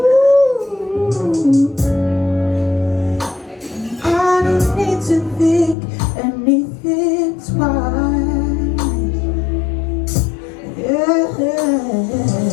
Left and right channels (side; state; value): right; drops out; at 5.8 s